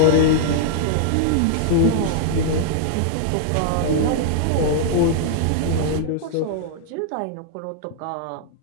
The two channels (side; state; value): both; different; correlation -0.01